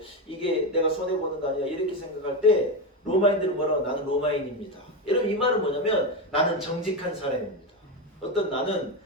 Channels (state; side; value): normal; both; correlation 0.13